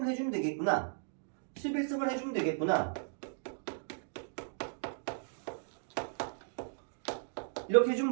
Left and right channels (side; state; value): left; silent; digital silence